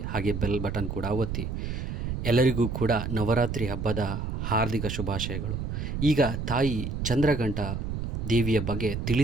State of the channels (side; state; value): right; noise; rumble, 3 dB below the sound